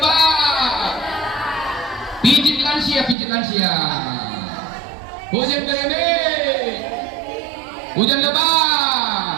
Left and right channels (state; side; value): drops out; left; at 3.2 s